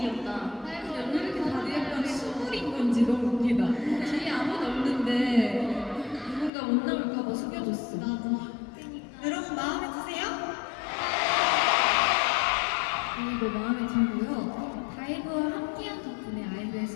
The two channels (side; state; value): right; drops out; at 6.5 s